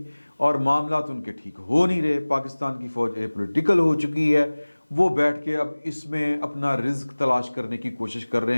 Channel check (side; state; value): both; inverted; correlation -1.00